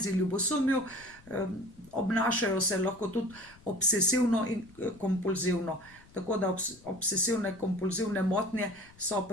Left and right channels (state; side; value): noise; left; rumble, 25 dB below the sound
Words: ljubosumju, obnašajo se lahko tudi obsesivno in kompulzivno. Tako da obsesivne kompulzivne motnje so